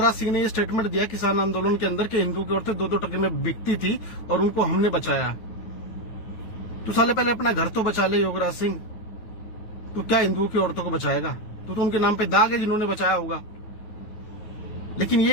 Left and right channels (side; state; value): right; late; 9.4 ms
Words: सिंह ने ये स्टेटमेंट दिया किसान आंदोलन के अंदर कि हिंदू की औरतें 2-2 टके में बिकती थी और उनको हमने बचाया। तू साले पहले अपना घर तो बचा ले योगराज सिंह, तू क्या हिंदुओं की औरतों को बचाएगा? तू तो उनके नाम पे दाग है जिन्होंने बचाया होगा। लेकिन